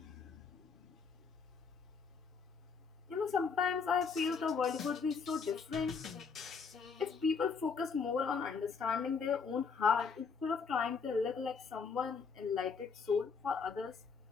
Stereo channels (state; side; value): quieter; right; 5.5 dB